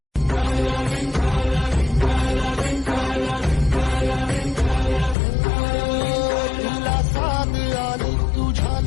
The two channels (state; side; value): drops out; right; at 5.2 s